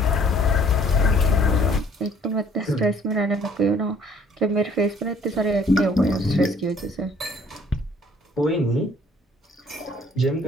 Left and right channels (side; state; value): both; normal; correlation 0.58